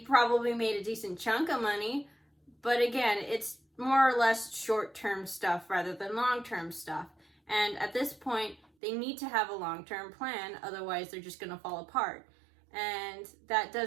made a decent chunk of money, but again, it's more or less short-term stuff rather than long-term stuff. And at this point, they need to have a long-term plan, otherwise they're just going to fall apart. And that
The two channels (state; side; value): drops out; left; at 8.6 s